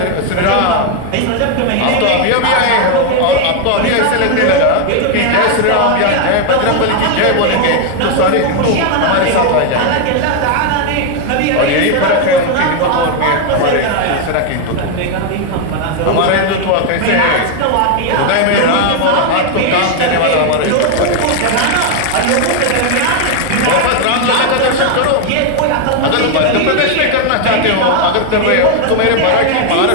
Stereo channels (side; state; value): both; different; correlation 0.01